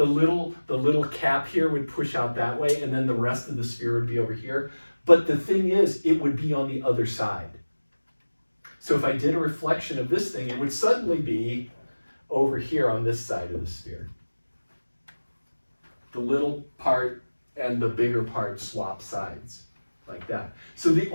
little cap here would push out that way, and then the rest of the sphere would be over here. But the thing is, it would be on the other side. So if I did a reflection of this thing, it would suddenly be over here on this side of the sphere. The little part and the bigger part swap sides like that. So the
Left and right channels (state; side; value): inverted; both; correlation -1.00